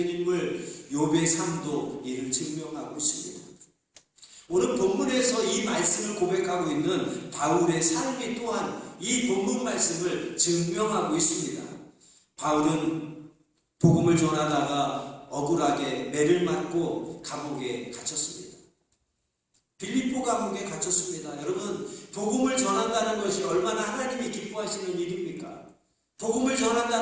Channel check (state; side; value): identical; both; correlation 1.00